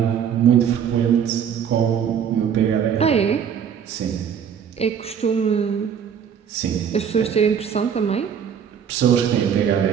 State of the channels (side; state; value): left; quieter; 8.0 dB